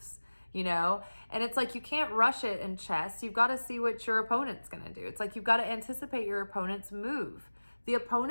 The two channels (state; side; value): inverted; both; correlation -1.00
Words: you know? And it's like, you can't rush it in chess. You've got to see what your opponent's going to do. It's like, you've got to anticipate your opponent's move. The